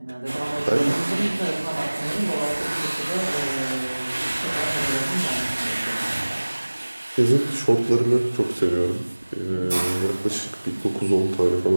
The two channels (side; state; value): both; inverted; correlation -1.00